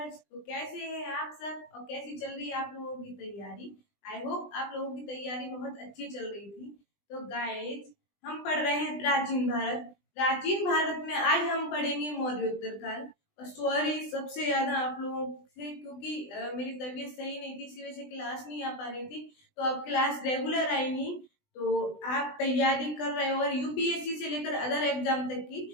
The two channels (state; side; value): late; right; 20 ms